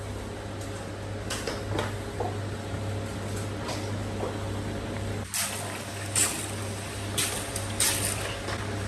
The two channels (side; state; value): both; identical; correlation 1.00